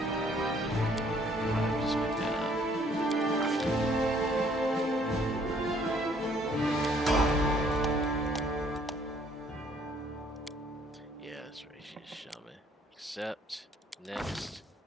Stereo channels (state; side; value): normal; both; correlation 0.62